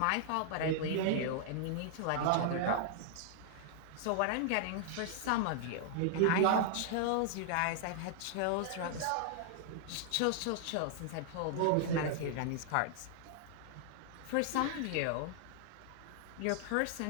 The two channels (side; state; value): both; different; correlation -0.01